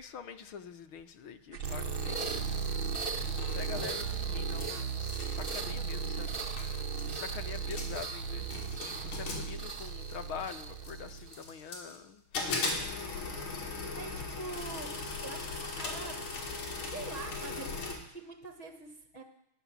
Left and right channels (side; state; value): right; late; 6.4 ms